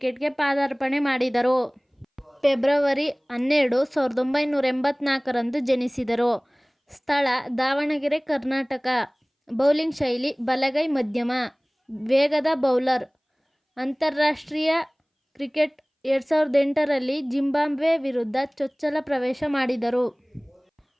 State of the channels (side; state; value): both; identical; correlation 1.00